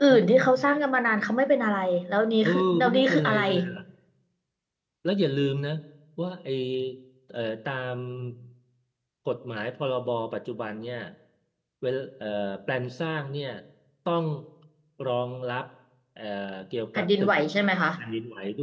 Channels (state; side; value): identical; both; correlation 1.00